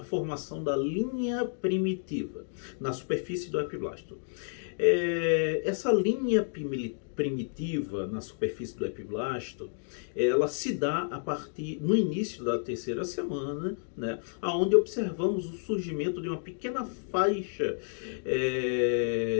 da linha primitiva na superfície do epiblasto. Essa linha primitiva na superfície do epiblasto, ela se dá a partir no início da terceira semana, onde observamos o surgimento de uma pequena faixa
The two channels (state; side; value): silent; right; digital silence